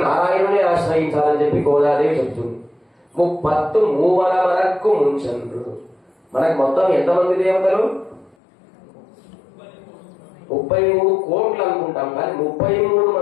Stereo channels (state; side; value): drops out; right; at 8.3 s